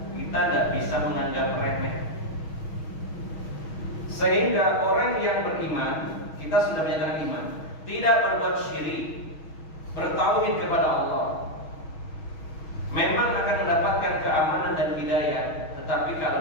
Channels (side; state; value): right; late; 6.3 ms